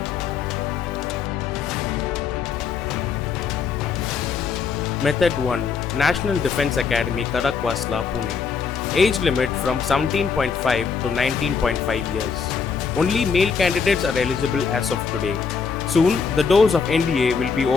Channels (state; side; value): quieter; right; 5.7 dB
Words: Method 1 National Defence Academy Kadakwasla, Pune. Age limit from 17.5 to 19.5 years. Only male candidates are eligible as of today. Soon, the doors of NDA will be